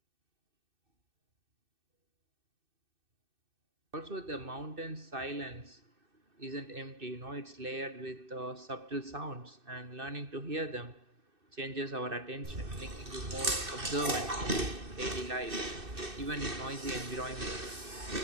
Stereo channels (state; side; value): late; left; 2.6 ms